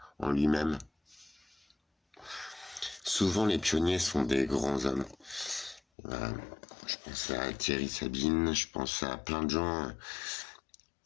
en lui-même. Souvent les pionniers sont des grands hommes. Voilà. Je pense à Thierry Sabine, je pense à plein de gens.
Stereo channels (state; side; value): drops out; right; at 5.8 s